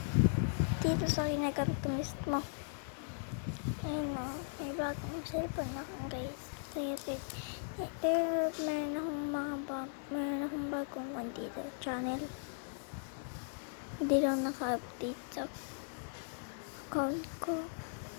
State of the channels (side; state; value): right; silent; digital silence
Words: Dito sa kinagamit mismo. Ayun na, may bagong cellphone akong guys. So, YouTube. Pero meron akong bagong one dito, channel. Hindi lang naka-update sa account ko.